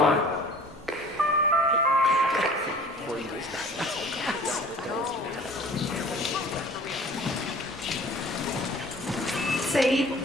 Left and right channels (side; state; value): both; normal; correlation 0.47